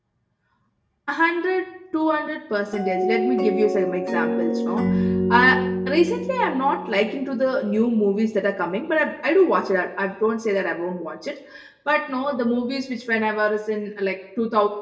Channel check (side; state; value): both; identical; correlation 1.00